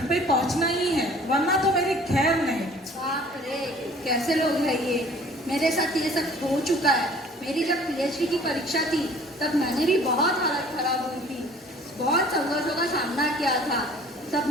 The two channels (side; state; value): both; normal; correlation 0.51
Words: पे पहुंचना ही है, वरना तो मेरी खैर नहीं। बाप रे, कैसे लोग हैं ये। मेरे साथ ये सब हो चुका है। मेरी जब PhD की परीक्षा थी तब मैंने भी बहुत हालत खराब हुई थी। बहुत संघर्षों का सामना किया था।